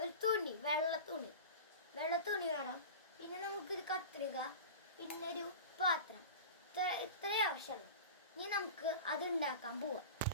തുണി, വെള്ള തുണി വേണം. പിന്നെ നമുക്കൊരു കത്രിക, പിന്നെ ഒരു പാത്രം. ഇത്രയും ആവശ്യമുള്ളൂ. ഇനി നമുക്ക് അത് ഉണ്ടാക്കാൻ പോവാം.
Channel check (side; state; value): both; inverted; correlation -0.33